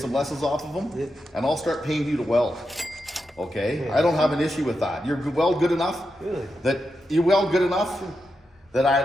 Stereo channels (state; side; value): normal; both; correlation 0.87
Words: lessons off of them, Yeah. and I'll start paying you to weld. Okay? Yeah. I don't have an issue with that. You're weld good enough Really? that you weld good enough that